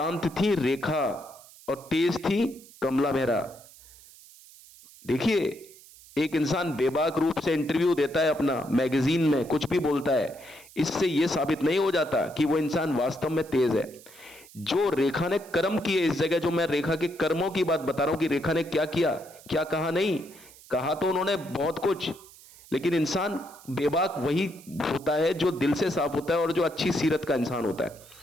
थी रेखा और तेज थी कमला मेहरा। देखिए, एक इंसान बेबाक रूप से इंटरव्यू देता है अपना मैगजीन में, कुछ भी बोलता है, इससे यह साबित नहीं हो जाता कि वो इंसान वास्तव में तेज है। जो रेखा ने कर्म किए इस जगह, जो मैं रेखा के कर्मों की बात बता रहा हूं कि रेखा ने क्या किया, क्या कहा, नहीं कहा तो उन्होंने बहुत कुछ, लेकिन इंसान बेबाक वही होता है जो दिल से साफ होता है और जो अच्छी सीरत का इंसान होता है।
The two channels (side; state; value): right; noise; hiss, 22 dB below the sound